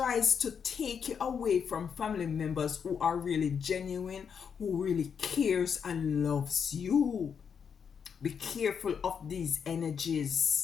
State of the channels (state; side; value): quieter; right; 6.9 dB